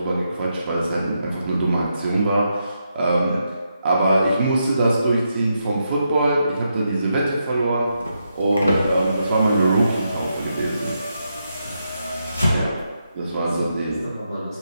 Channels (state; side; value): inverted; both; correlation -0.83